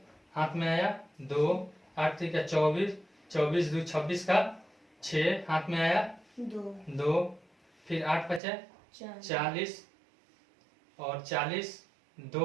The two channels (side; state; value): left; drops out; at 8.4 s